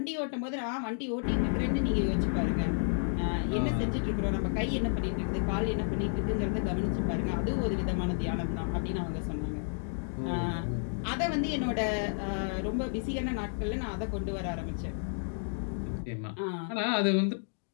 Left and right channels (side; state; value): right; silent; digital silence